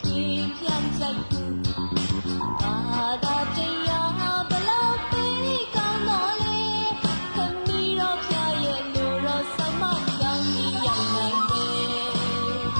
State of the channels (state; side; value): inverted; both; correlation -1.00